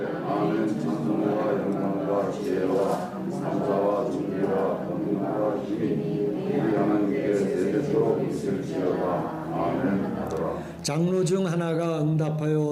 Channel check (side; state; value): both; identical; correlation 1.00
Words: 아멘. 찬송과 영광과 지혜와 감사와 존귀와 권능과 힘이 우리 하나님께 세대토록 있을지어다. 아멘 하더라. 장로 중 하나가